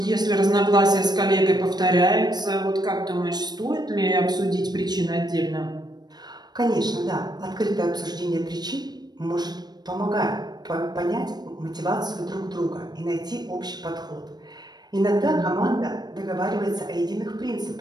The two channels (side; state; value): left; late; 0.20 ms